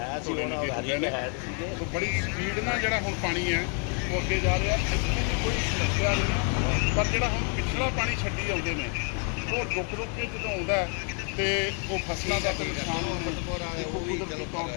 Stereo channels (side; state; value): right; quieter; 39.9 dB